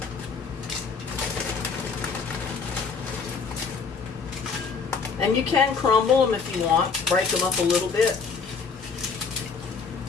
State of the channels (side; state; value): right; quieter; 5.3 dB